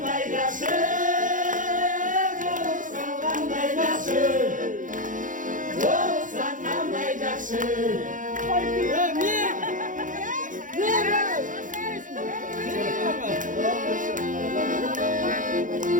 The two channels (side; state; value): left; late; 0.38 ms